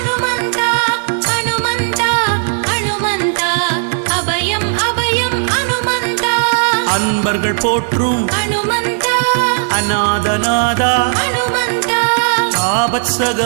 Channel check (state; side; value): silent; left; 70 dB below the other